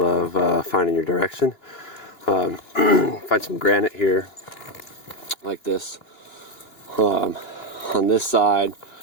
of finding your direction. Find some granite here, like this. On this side,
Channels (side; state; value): right; late; 2.9 ms